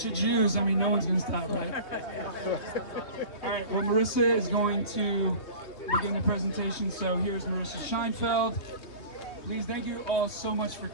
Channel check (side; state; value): right; late; 3.2 ms